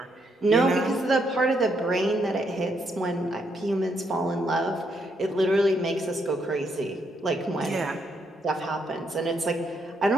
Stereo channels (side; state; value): both; normal; correlation 0.76